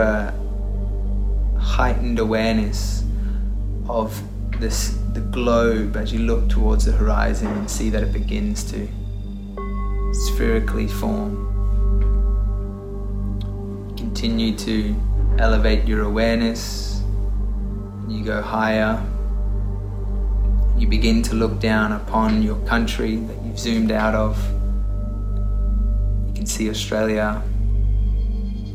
heightened awareness of the globe as you look towards the horizon and see that it begins to spherically form. Continue to elevate your awareness. You go higher. You begin to look down upon your country that you've zoomed out of. You can see Australia.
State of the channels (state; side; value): identical; both; correlation 1.00